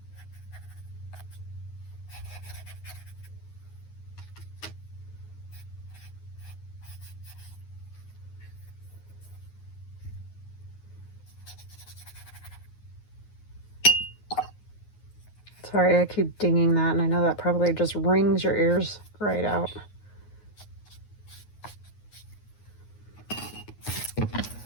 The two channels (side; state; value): right; late; 9.5 ms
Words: Sorry, I keep dinging that, and I know that probably just rings your ears right out.